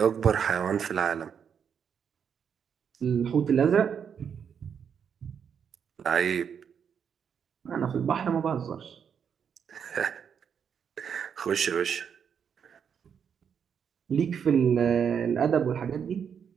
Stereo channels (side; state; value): left; quieter; 7.5 dB